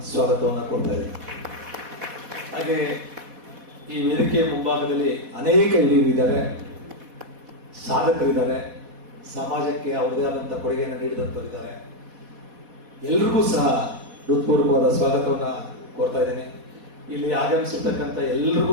ಸ್ವಾಗತವನ್ನು ಕೊಡ್ತಾ ಇದ್ದಾರೆ. ಹಾಗೆ ಈ ವೇದಿಕೆಯ ಮುಂಭಾಗದಲ್ಲಿ ಅನೇಕ ಹಿರಿಯರಿದ್ದಾರೆ, ಸಾಧಕರಿದ್ದಾರೆ, ಸಮಾಜಕ್ಕೆ ಅವರದೇ ಆದಂಥ ಕೊಡುಗೆಯನ್ನು ನೀಡಿದಂಥವರಿದ್ದಾರೆ. ಎಲ್ರಿಗೂ ಸಹ ಹೃತ್ಪೂರ್ವಕವಾದ ಸ್ವಾಗತವನ್ನು ಕೊಡ್ತಾ ಇದ್ದೇನೆ. ಇಲ್ಲಿ ಆಗಮಿಸಿರ್ತಕ್ಕಂಥ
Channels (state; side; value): late; left; 4.1 ms